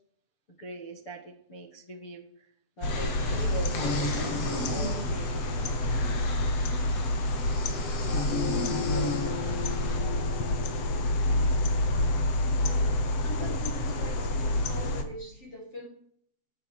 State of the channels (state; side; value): late; right; 7.8 ms